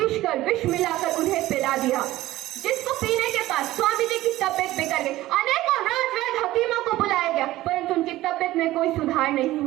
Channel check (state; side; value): quieter; left; 16.3 dB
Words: विष मिलाकर उन्हें पिला दिया, जिसको पीने के बाद स्वामी जी की तबियत बिगड़ गई। अनेकों राजवैद्य हकीमों को बुलाया गया, परंतु उनकी तबियत में कोई सुधार नहीं